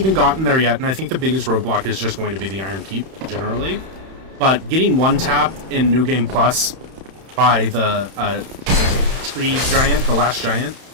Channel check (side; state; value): left; late; 31 ms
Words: gotten there yet, and I think the biggest roadblock is just going to be the Iron Keep, generally. But getting one-tapped in New Game Plus by the tree giant, the last giant,